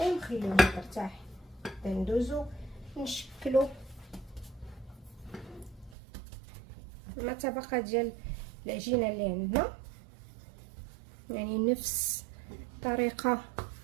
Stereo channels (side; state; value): left; drops out; at 6.0 s